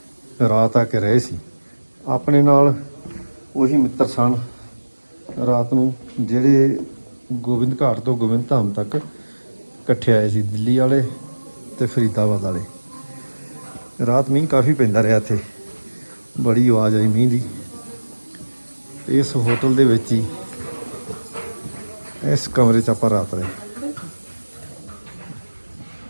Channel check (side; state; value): both; inverted; correlation -1.00